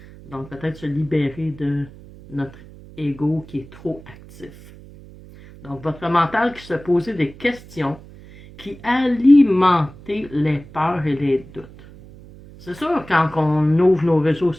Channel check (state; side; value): noise; right; hum, 20 dB below the sound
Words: Donc, peut-être se libérer de notre ego qui est trop actif. Donc, votre mental qui se posait des questions qui alimentaient les peurs et les doutes. C'est sûr, quand on ouvre nos réseaux